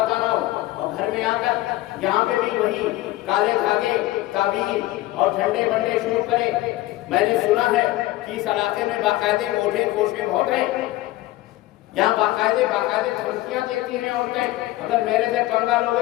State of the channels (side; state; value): right; quieter; 17.3 dB